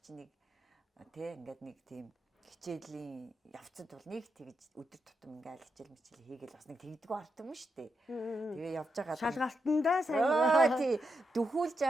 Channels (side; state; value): both; normal; correlation 0.84